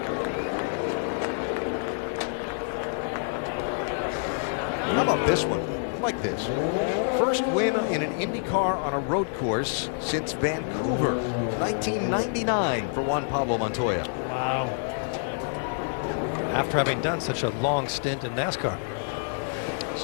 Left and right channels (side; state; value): right; silent; 60 dB below the other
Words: How about this one? I like this. First win in an IndyCar on a road course since Vancouver, 1999 for Juan Pablo Montoya. Wow. After having done such a long stint in NASCAR.